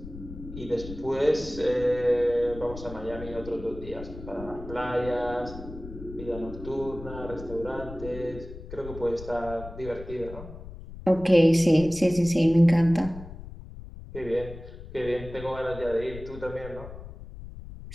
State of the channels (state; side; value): noise; left; rumble, 13 dB below the sound